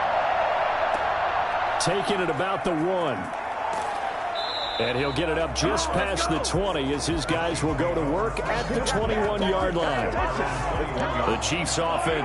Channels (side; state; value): both; identical; correlation 1.00